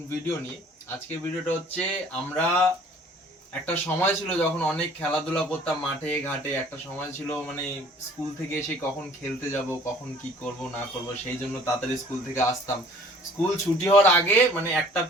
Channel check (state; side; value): normal; both; correlation 0.53